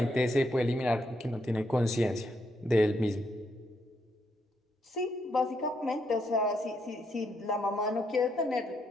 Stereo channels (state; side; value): normal; both; correlation 0.77